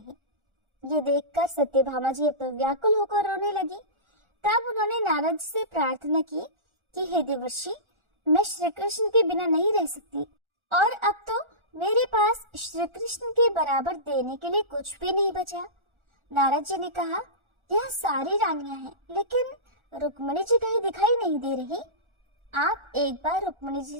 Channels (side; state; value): left; late; 1.4 ms